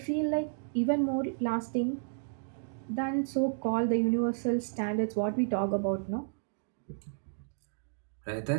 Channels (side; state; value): left; silent; digital silence